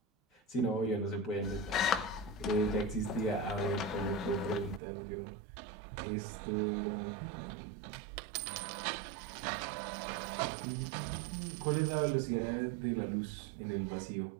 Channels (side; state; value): left; drops out; at 4.8 s